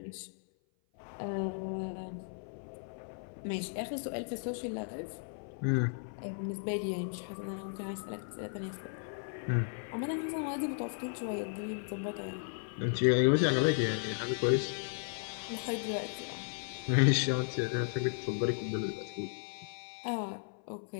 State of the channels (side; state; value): right; silent; 54 dB below the other